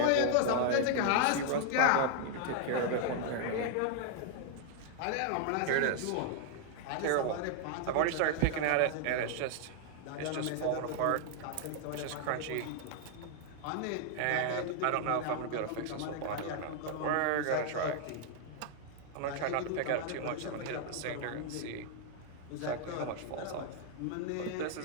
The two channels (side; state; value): both; different; correlation 0.00